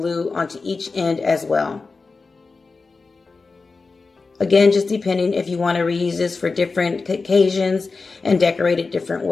onto each end as well. Again, just depending if you want to reuse this for different occasions and decorate it different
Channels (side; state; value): right; quieter; 4.2 dB